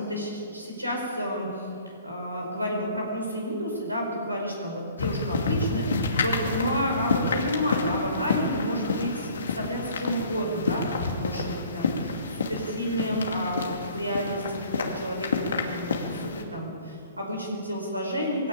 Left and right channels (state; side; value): inverted; both; correlation -0.54